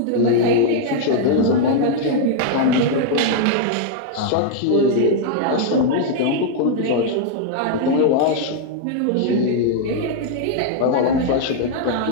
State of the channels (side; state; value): both; different; correlation -0.01